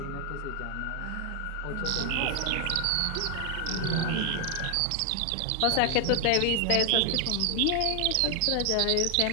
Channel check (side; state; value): both; different; correlation 0.00